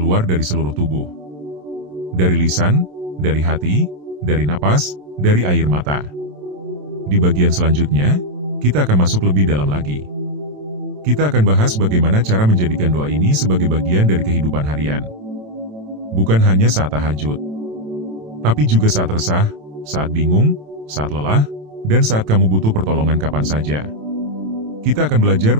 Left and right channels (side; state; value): left; late; 27 ms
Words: dari seluruh tubuh. Dari lisan, dari hati, dari napas, dari air mata. Di bagian selanjutnya, kita akan masuk lebih dalam lagi. Kita akan bahas bagaimana cara menjadikan doa ini sebagai bagian dari kehidupan harian. Bukan hanya saat tahajud, tapi juga saat resah, saat bingung, saat lelah, dan saat kamu butuh pertolongan kapan saja. Kita akan